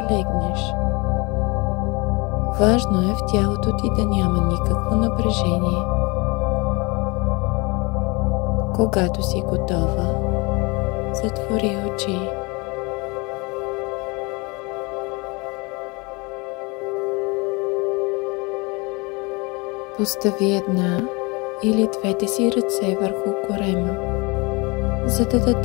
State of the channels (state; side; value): quieter; right; 27.3 dB